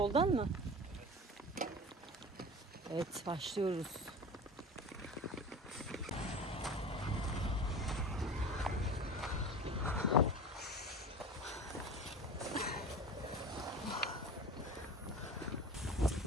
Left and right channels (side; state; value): both; normal; correlation 0.35